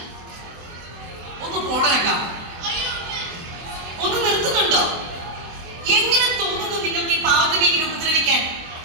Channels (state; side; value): late; left; 24 ms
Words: ഒന്ന് പോണേക്കാം. ഒന്ന് നിർത്തുന്നുണ്ടോ? എങ്ങനെ തോന്നുന്നു നിങ്ങൾക്ക് ഈ പാവത്തിനെ ഇങ്ങനെ ഉപദ്രവിക്കാൻ?